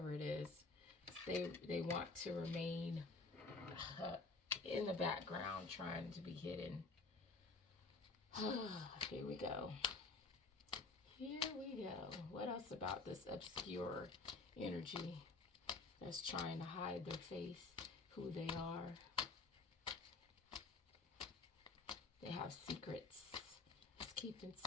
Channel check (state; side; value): quieter; right; 3.7 dB